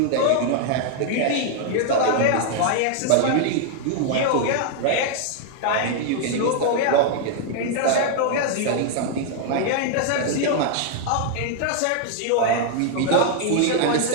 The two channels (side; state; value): both; different; correlation 0.00